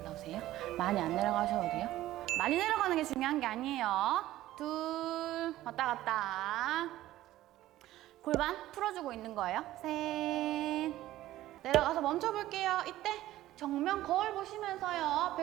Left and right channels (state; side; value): quieter; left; 14.9 dB